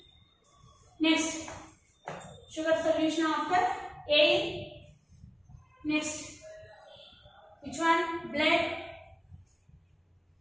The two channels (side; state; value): both; identical; correlation 1.00